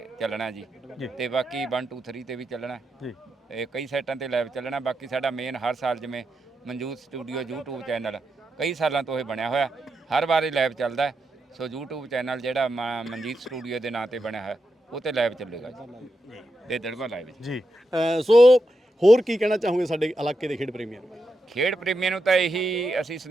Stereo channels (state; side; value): normal; both; correlation 0.86